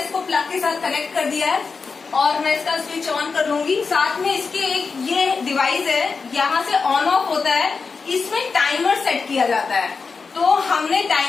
प्लग के साथ कनेक्ट कर दिया है और मैं इसका स्विच ऑन कर लूंगी। साथ में इसके एक ये डिवाइस है, यहाँ से ऑन ऑफ होता है, इसमें टाइमर सेट किया जाता है। तो हमने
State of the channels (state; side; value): quieter; right; 4.8 dB